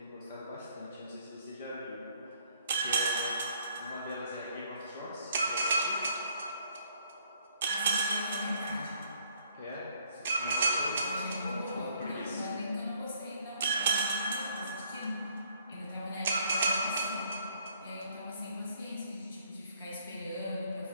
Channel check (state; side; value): inverted; both; correlation -0.65